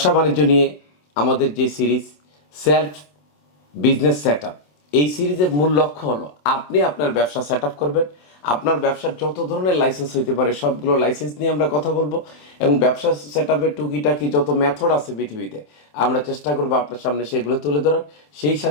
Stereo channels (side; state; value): right; late; 27 ms